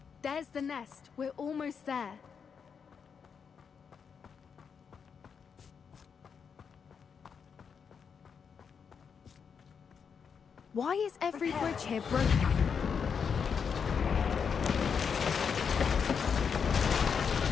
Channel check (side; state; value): right; quieter; 6.5 dB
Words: There's the nest. We're almost there. Why is every bridge here broken?